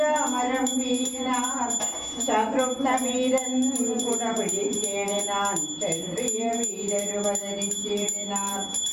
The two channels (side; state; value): both; identical; correlation 1.00